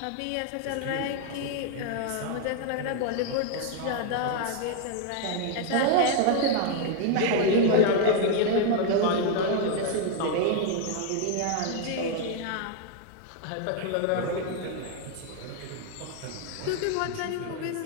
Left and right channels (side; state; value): both; different; correlation 0.00